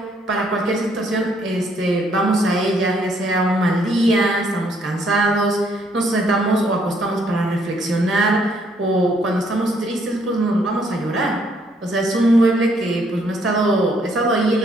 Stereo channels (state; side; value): normal; both; correlation 0.68